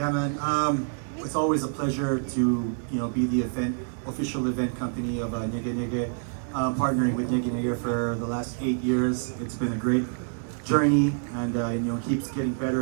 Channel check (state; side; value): silent; left; 60 dB below the other